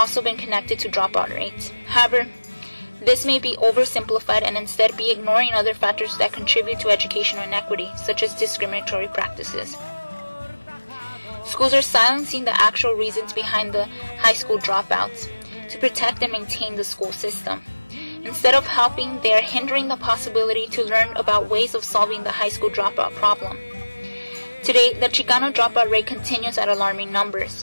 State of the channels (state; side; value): inverted; both; correlation -1.00